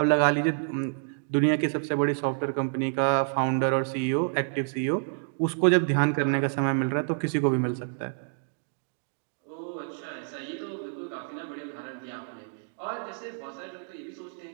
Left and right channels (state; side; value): silent; left; digital silence